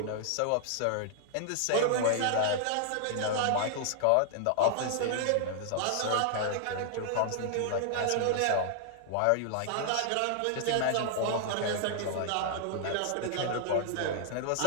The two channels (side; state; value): both; different; correlation -0.01